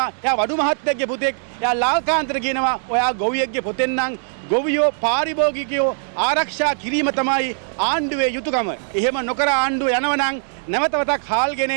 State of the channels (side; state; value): left; silent; digital silence